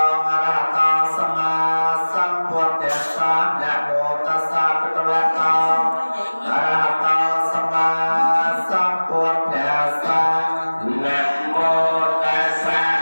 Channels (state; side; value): inverted; both; correlation -1.00